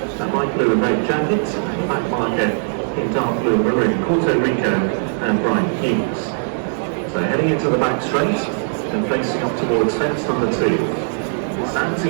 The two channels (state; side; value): silent; left; digital silence